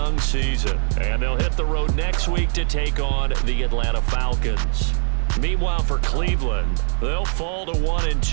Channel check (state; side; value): silent; left; digital silence